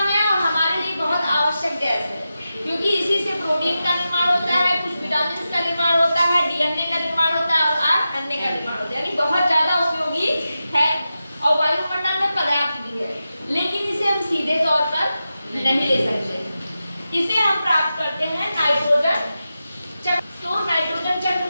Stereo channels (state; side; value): inverted; both; correlation -0.91